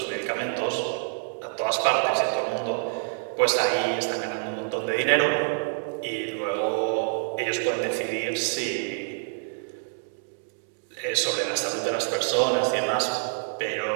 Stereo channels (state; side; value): silent; left; digital silence